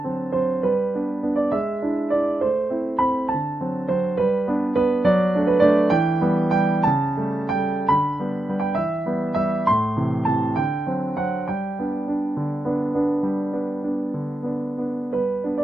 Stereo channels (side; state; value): both; normal; correlation 0.88